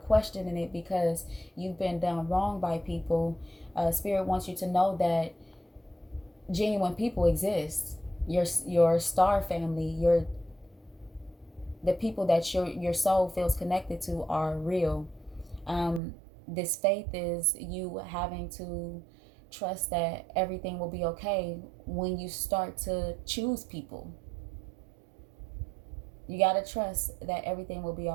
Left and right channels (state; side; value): drops out; left; at 16.0 s